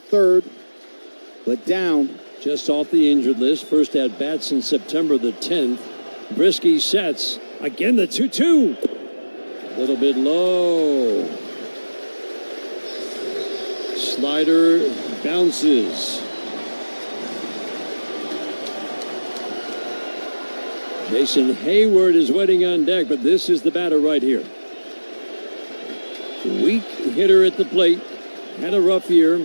but down. Just off the injured list. First at bat since September the 10th. Brisky sets. Again, the 2-2. A little bit low. Slider bounces. Jason Hayward is waiting on deck, but this is the batter right here. Weak hitter at the plate. Had a rough year.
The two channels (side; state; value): both; inverted; correlation -1.00